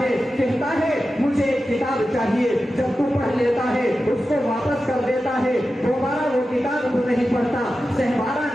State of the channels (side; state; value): both; normal; correlation 0.92